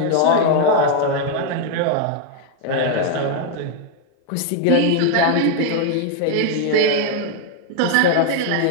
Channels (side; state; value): both; different; correlation 0.00